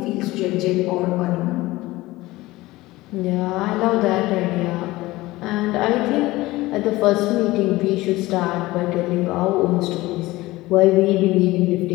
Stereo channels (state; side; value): quieter; right; 18.9 dB